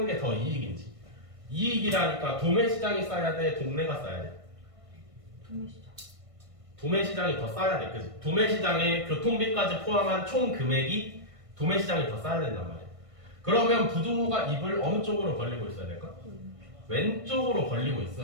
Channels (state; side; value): late; left; 1.6 ms